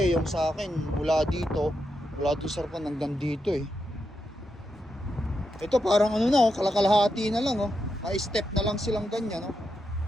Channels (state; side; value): normal; both; correlation 0.85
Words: yung sa akin mula dito sa harapan hanggang dito Ito parang kalakalahati na lang May step na lang silang ganyan